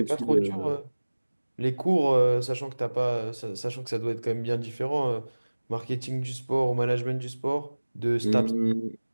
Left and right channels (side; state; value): both; inverted; correlation -1.00